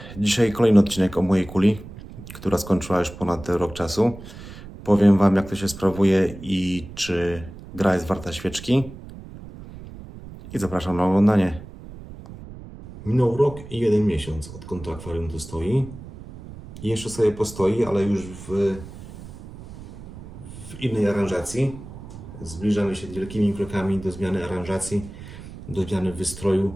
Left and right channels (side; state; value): right; noise; rumble, 15 dB below the sound